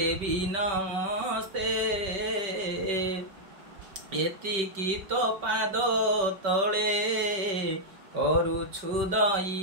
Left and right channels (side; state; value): left; late; 5.2 ms